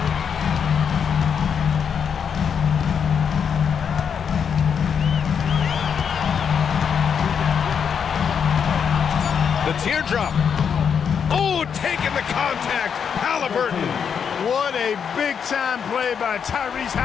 The teardrop. Oh, taking the contact. Halliburton. What a big-time play by Tyrese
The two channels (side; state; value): right; quieter; 7.2 dB